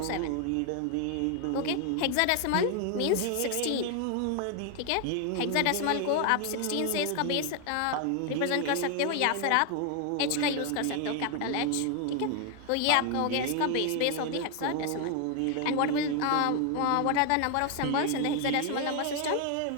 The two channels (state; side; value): different; both; correlation 0.00